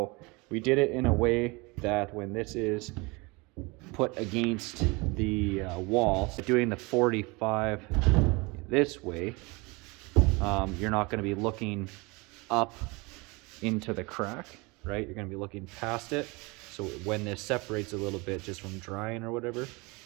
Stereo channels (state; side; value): quieter; left; 26.3 dB